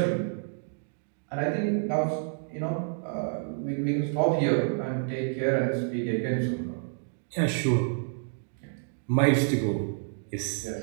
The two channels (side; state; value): left; silent; digital silence